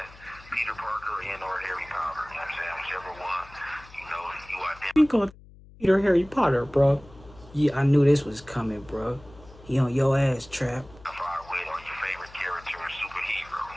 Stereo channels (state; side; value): noise; left; hum, 22 dB below the sound